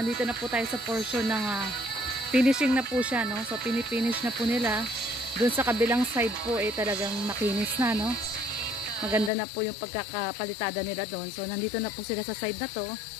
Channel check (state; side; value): drops out; right; at 9.3 s